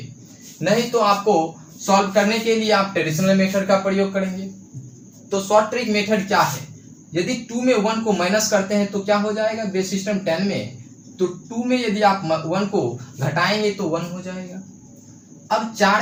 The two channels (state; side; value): identical; both; correlation 1.00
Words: नहीं तो आपको सॉल्व करने के लिए आप ट्रेडिशनल मेथड का प्रयोग करेंगे। तो शॉर्ट ट्रिक मेथड क्या है, यदि 2 में 1 को माइनस करते हैं तो क्या हो जाएगा बेस सिस्टम 10 में, तो 2 में यदि आप 1 को घटाएंगे तो 1 हो जाएगा। अब 4